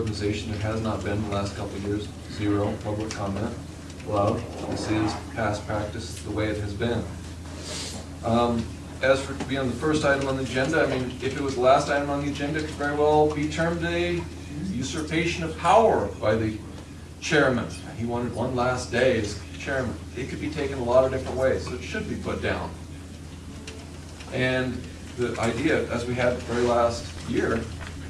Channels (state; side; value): identical; both; correlation 1.00